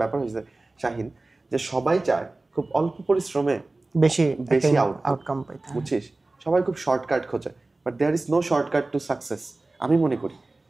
ব্যাপার হয়েছে শাহিন, যে সবাই চায় খুব অল্প পরিশ্রমে বেশি আউটকাম পাইতে, বুঝছিস? সবাই খুব শর্টকাট খোঁজে, but there is no shortcut to success. আমি মনে করি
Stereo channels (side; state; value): left; quieter; 3.1 dB